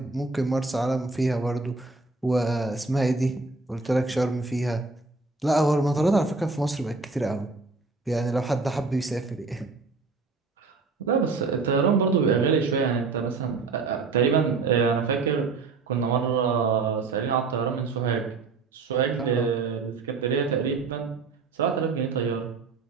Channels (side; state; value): left; quieter; 4.1 dB